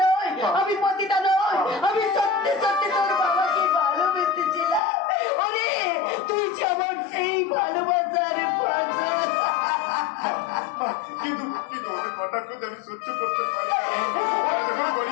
নই, আমি পতিতা নই, আমি সত্যি সত্যি তোর বাবাকে ভালোবেসেছিলাম। আরে তুই যে আমার সেই ভালোবাসার ফসল। কিন্তু ওদের কটাক্ষ আমি সহ্য করতে পারি না।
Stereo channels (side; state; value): right; drops out; at 4.8 s